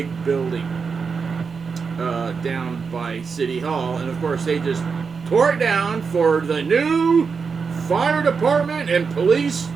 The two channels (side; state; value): left; quieter; 5.4 dB